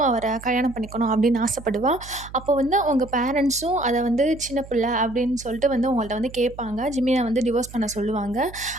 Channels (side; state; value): right; noise; hum, 17 dB below the sound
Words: அவரை கல்யாணம் பண்ணிக்கணும் அப்படின்னு ஆசைப்படுவா. அப்போ வந்து அவங்க பேரண்ட்ஸும் அதை வந்து சின்ன பிள்ளை அப்படின்னு சொல்லிட்டு வந்து அவங்கள்ட்ட வந்து கேட்பாங்க. ஜிமினை வந்து டிவோர்ஸ் பண்ண சொல்லுவாங்க.